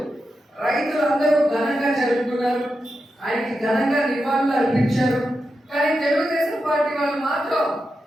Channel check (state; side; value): normal; both; correlation 0.88